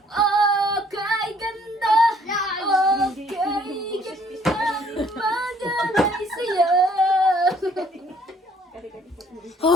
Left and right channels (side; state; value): both; normal; correlation 0.61